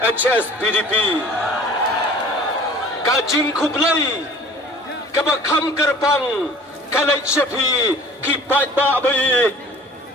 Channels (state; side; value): normal; both; correlation 0.47